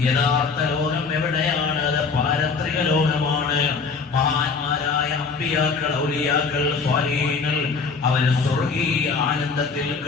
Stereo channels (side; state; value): right; quieter; 4.9 dB